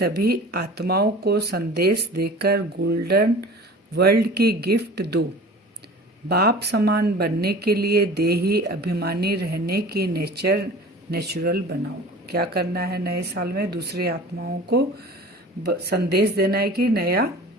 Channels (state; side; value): normal; both; correlation 0.41